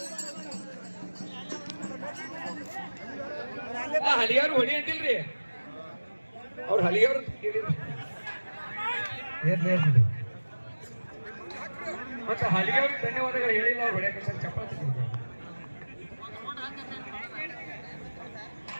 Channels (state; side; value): inverted; both; correlation -1.00